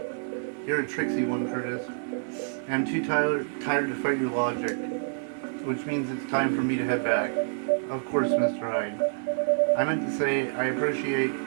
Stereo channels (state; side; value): silent; left; digital silence